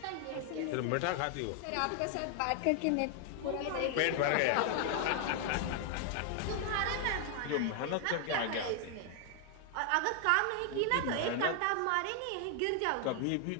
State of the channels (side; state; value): both; different; correlation 0.00